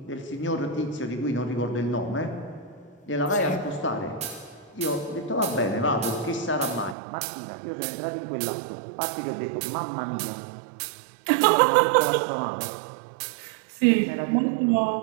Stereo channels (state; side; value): drops out; left; at 7.0 s